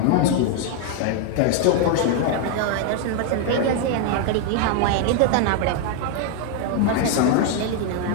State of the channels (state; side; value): different; both; correlation 0.00